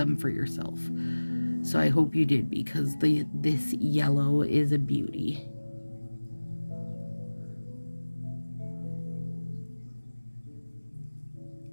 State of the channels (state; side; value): inverted; both; correlation -1.00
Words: for yourself. So I hope you did, because this yellow is a beauty.